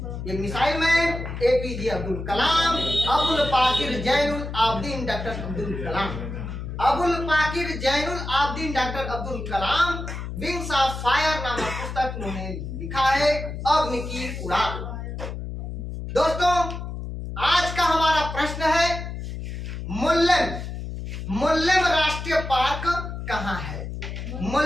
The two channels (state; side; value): noise; left; hum, 7 dB below the sound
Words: ये missile man APJ Abdul Kalam, Abul Pakir Zainul Abedin doctor Abdul Kalam, Abul Pakir Zainul Abedin doctor Abdul Kalam wings of fire नामक पुस्तक उन्होंने लिखा है, अग्नि की उड़ान। दोस्तों आज का हमारा प्रश्न है मुल्लेम राष्ट्रीय पार्क कहाँ है।